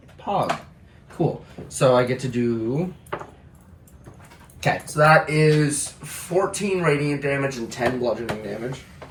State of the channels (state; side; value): identical; both; correlation 1.00